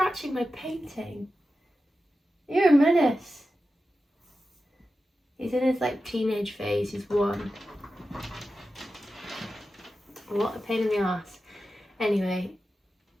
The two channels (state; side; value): normal; both; correlation 0.92